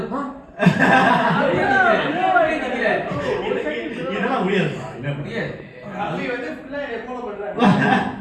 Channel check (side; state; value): both; identical; correlation 1.00